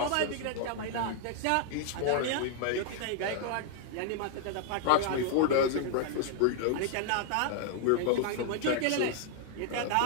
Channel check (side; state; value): both; different; correlation -0.01